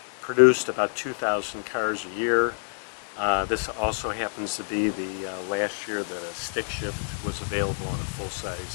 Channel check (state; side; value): silent; right; digital silence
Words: produced about 2,000 cars a year. This also happens to be the last year that a stick shift was available on a